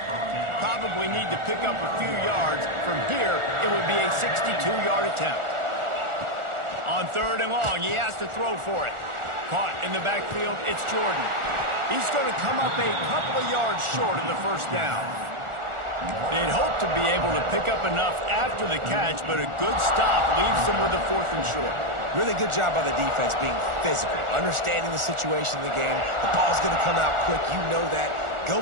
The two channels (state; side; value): late; left; 1.4 ms